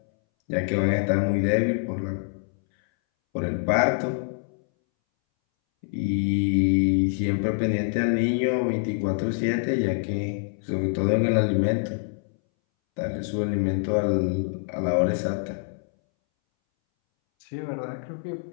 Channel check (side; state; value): right; silent; 61 dB below the other